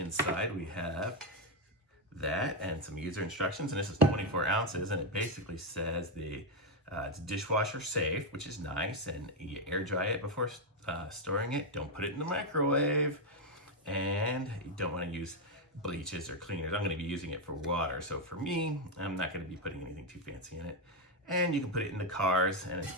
we have that and some user instructions, and this is 24 ounces, and it basically says it's dishwasher safe, which is nice, and you air dry it before storing it. Don't put it in the microwave, and you don't want to use bleaches or cleaners. I'm going to be using it for water, so for me, I'm not going to be putting anything too fancy in it. And you can put it in the cars, and it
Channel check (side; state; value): both; normal; correlation 0.04